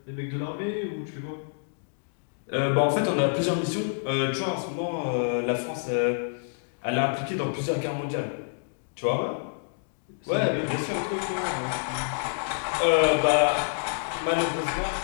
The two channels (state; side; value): silent; right; digital silence